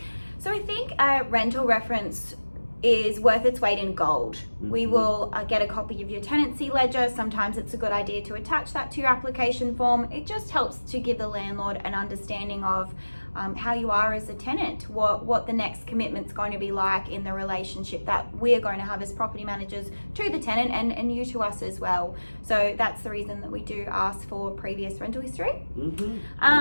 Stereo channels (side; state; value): both; inverted; correlation -1.00